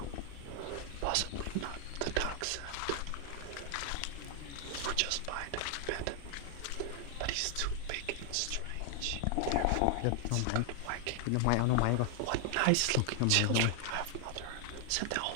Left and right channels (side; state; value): both; different; correlation 0.00